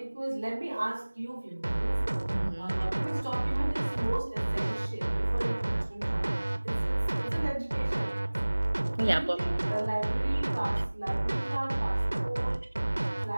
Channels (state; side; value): inverted; both; correlation -1.00